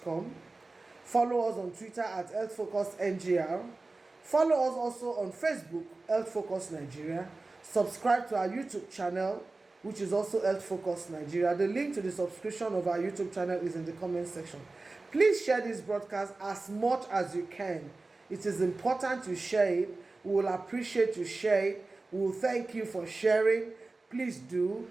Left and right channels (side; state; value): left; quieter; 3.4 dB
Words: Follow us on Twitter at HealthFocusNGR. Follow us also on Facebook, Health Focus Nigeria. Subscribe to our YouTube channel, which is also Health Focus Nigeria. The link to the subscription of our YouTube channel is in the comment section. Please share this broadcast as much as you can. It is important to share it. We will appreciate you share it. We will thank you for sharing. Please do.